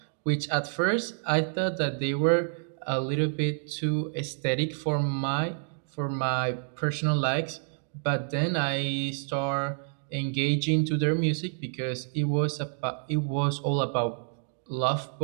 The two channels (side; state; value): left; silent; digital silence